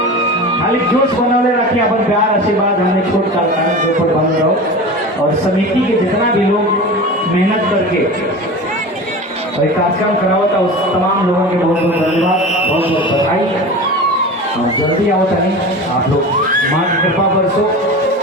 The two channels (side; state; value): both; normal; correlation 0.31